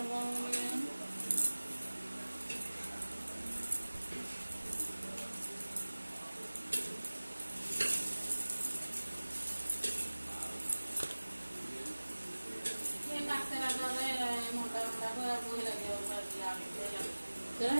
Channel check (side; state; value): both; inverted; correlation -1.00